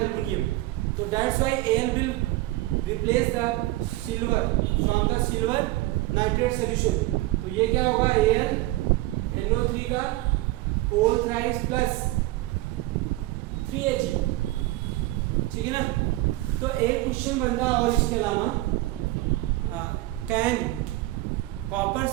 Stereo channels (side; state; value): left; quieter; 18.5 dB